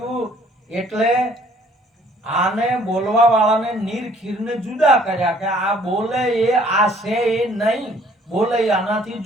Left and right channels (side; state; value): both; normal; correlation 0.59